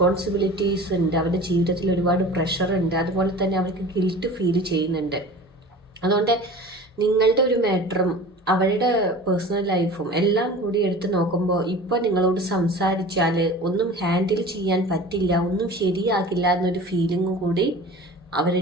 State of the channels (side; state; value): both; normal; correlation 0.39